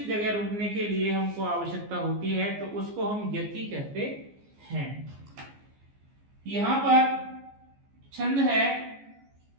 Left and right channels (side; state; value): left; late; 14 ms